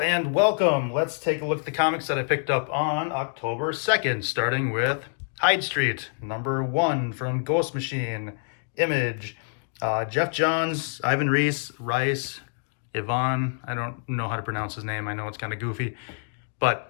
welcome. Let's take a look at the comics that I picked up on October 2nd, starting with Hyde Street, #1 from Ghost Machine, Image. Jeff Johns, Ivan Rice, Yvonne. I don't know how to pronounce his name. I know it's kind of goofy,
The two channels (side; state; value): right; silent; digital silence